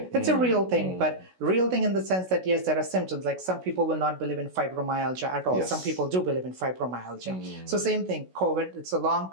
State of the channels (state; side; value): late; left; 16 ms